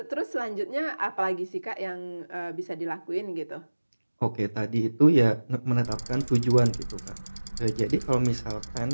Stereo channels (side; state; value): both; inverted; correlation -1.00